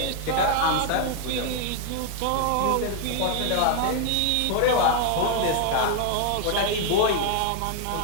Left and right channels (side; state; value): both; different; correlation 0.00